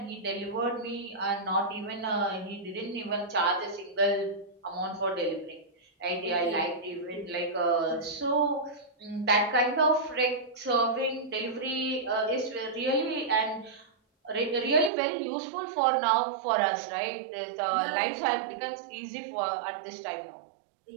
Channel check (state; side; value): drops out; left; at 14.9 s